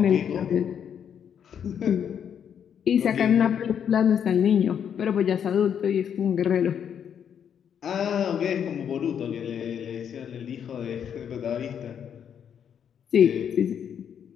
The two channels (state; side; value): quieter; right; 8.3 dB